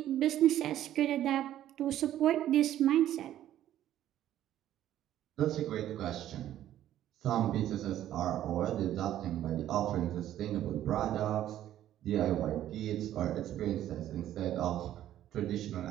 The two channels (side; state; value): left; quieter; 12.3 dB